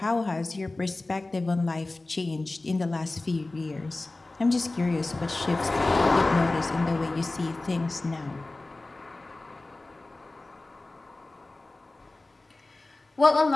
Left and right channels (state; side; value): quieter; right; 3.0 dB